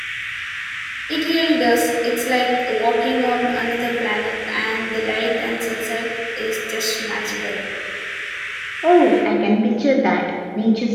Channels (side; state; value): both; identical; correlation 1.00